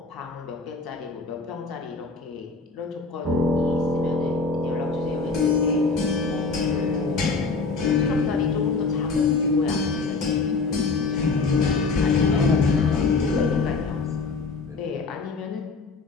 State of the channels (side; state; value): right; quieter; 4.2 dB